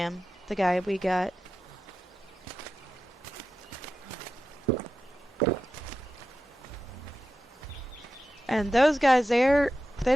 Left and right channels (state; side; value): normal; both; correlation 0.91